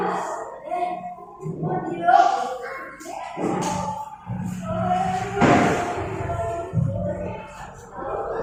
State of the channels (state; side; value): identical; both; correlation 1.00